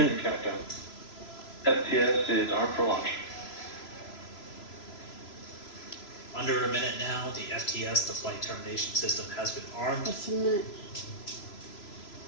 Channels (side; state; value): right; late; 3.0 ms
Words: Countdown. FTS is armed for launch. Under a minute now, the FTS, the flight termination system, has been armed. Just a minute.